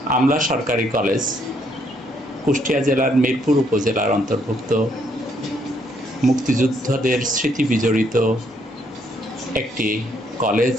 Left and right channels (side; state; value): both; normal; correlation 0.70